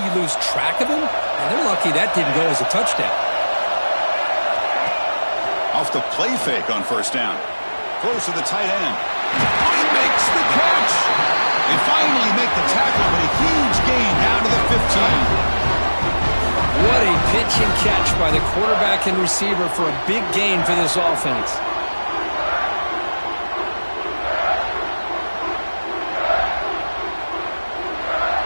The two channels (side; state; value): both; inverted; correlation -1.00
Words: you lose track of him, and they're lucky that didn't go as a touchdown. Off the play fake on first down. Close to the tight end. He makes the catch. They finally make the tackle, but a huge gain down to the 15. What a pitch and catch by the quarterback and receiver for a big gain for this offense.